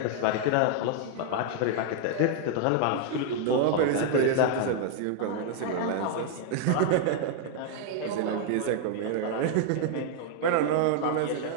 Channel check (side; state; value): both; different; correlation 0.00